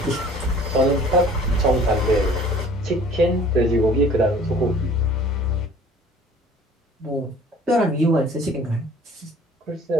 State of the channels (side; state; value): both; normal; correlation 0.50